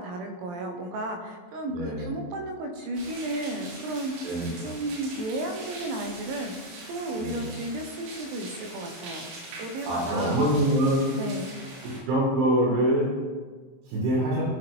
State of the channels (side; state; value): left; late; 23 ms